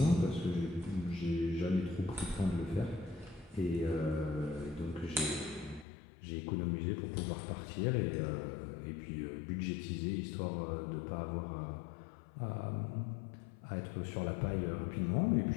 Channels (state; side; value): drops out; right; at 5.9 s